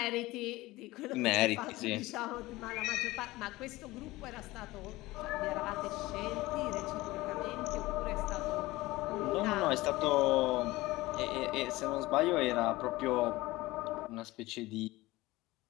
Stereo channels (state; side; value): quieter; right; 19.4 dB